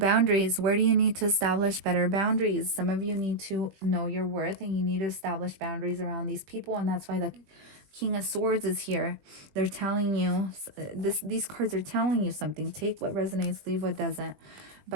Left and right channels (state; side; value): late; left; 20 ms